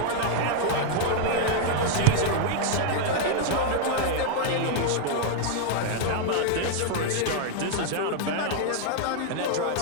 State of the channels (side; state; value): both; different; correlation 0.00